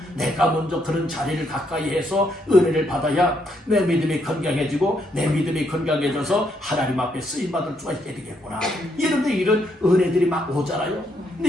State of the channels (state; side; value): normal; both; correlation 0.75